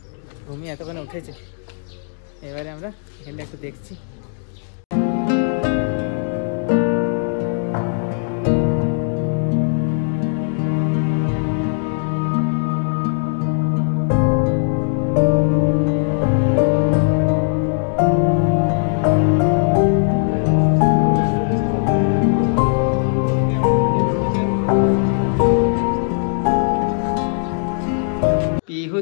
ঘুমিয়ে এতক্ষণে উঠেছে। এবারে আমরা এখানটা একটু দেখছি। পিহু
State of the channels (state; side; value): silent; right; digital silence